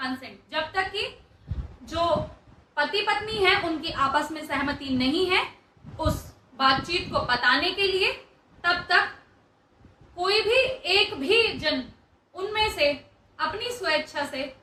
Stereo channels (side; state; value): both; identical; correlation 1.00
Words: जब तक कि जो पति पत्नी है उनकी आपस में सहमति नहीं है उस बातचीत को बताने के लिए, तब तक कोई भी एक भी जन उनमें से अपनी स्वेच्छा से